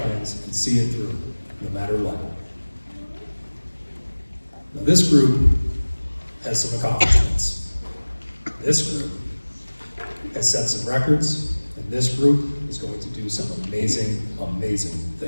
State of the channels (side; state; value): both; inverted; correlation -1.00